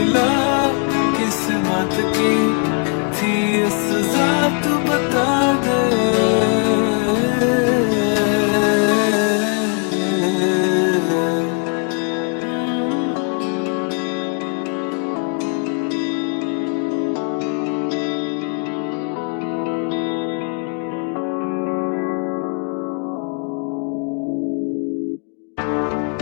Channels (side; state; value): right; quieter; 39.9 dB